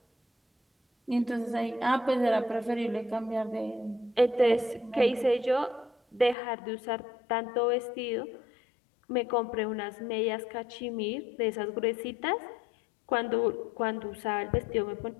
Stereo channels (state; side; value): drops out; right; at 6.4 s